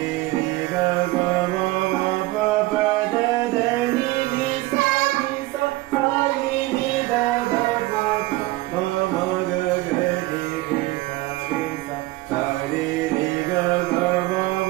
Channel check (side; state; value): left; quieter; 19.4 dB